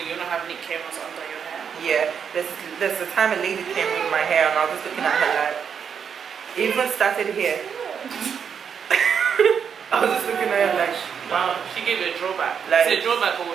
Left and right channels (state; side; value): quieter; left; 7.2 dB